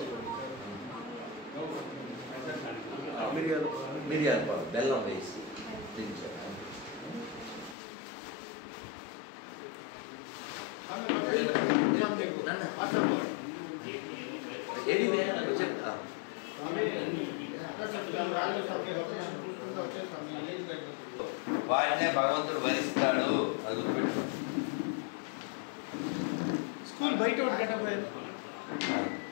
మిరియాల పాలు బెల్లం వేసి దించారు. ఏది చెప్తా వాడినే భగవంతుడు వరిస్తాడు, అది గుర్తుపెట్టు. స్కూల్ బయట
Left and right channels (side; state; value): right; drops out; at 7.8 s